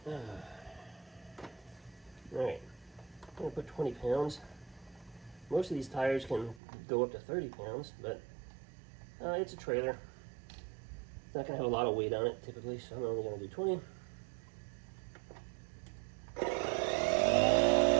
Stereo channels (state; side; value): drops out; left; at 6.6 s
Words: Alright, I'm going to put 20 pounds. Most of these tires can go up to 30 pounds, but it's a trailer. It's not going to have a lot of weight on it typically, so I'm only going to do 20.